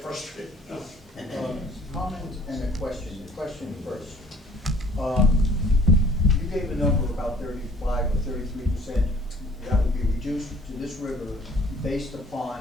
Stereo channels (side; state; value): both; normal; correlation 0.54